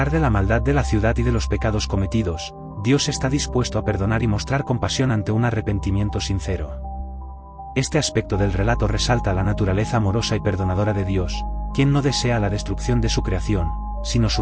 de la maldad de la ciudad y de los pecados cometidos, Dios está dispuesto a perdonar y mostrar compasión ante un arrepentimiento sincero. Este aspecto del relato resalta la naturaleza amorosa y perdonadora de Dios, quien no desea la destrucción de su creación, sino su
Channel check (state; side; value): identical; both; correlation 1.00